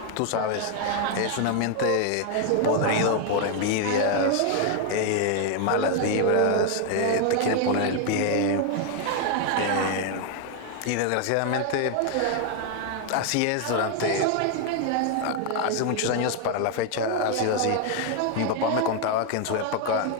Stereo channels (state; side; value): different; both; correlation 0.00